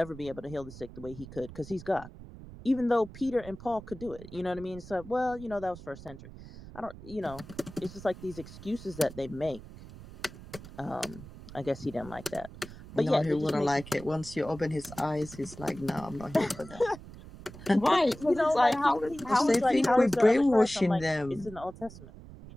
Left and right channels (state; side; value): noise; right; rumble, 16 dB below the sound